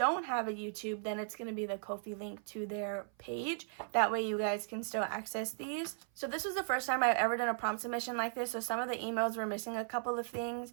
have a YouTube, then it's going to be the Ko-fi link to their page. That way you guys can still access these. So this was the first time I've ever done a prompt submission like this. So some of the emails were missing a couple of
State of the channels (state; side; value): silent; left; 53 dB below the other